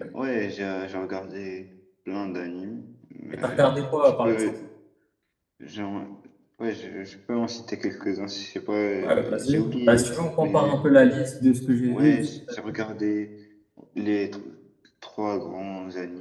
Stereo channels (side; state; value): both; identical; correlation 1.00